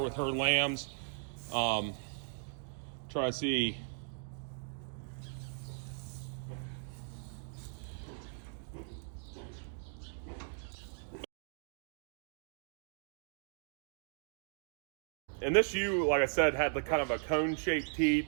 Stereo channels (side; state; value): left; silent; digital silence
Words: lambs. Try to see. And this ewe, like I said, had kind of a cone-shaped teat.